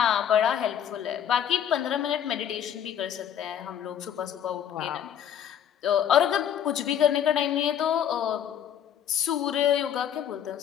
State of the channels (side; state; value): right; quieter; 9.4 dB